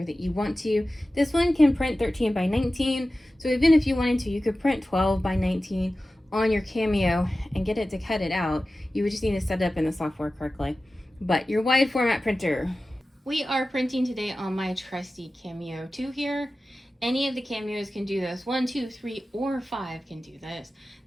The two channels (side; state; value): both; normal; correlation 0.95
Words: that you want to. This one can print 13 by 19, so even if you wanted to, you could print 12 by 19 on your Cameo and get it to cut it out. You would just need to set it up in the software correctly. But your wide format printer. We are printing today on my trusty Cameo 2 here. Any of the Cameos can do this. 1, 2, 3, or 5 can do this.